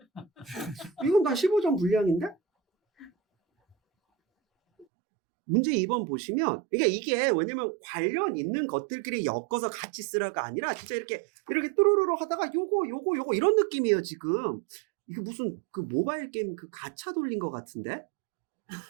이건 다 15점 분량인데? 문제 2번 보시면, 이게 왜냐면 관련 있는 것들끼리 엮어서 같이 쓰라가 아니라 진짜 이렇게 뚜루루루 하다가 요거 이런 느낌이에요, 지금. 이게 무슨 그 모바일 게임 그 가챠 돌린 것 같은데?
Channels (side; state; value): left; drops out; at 4.9 s